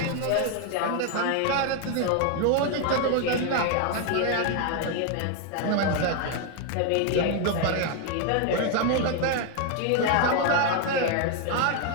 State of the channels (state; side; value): different; both; correlation 0.01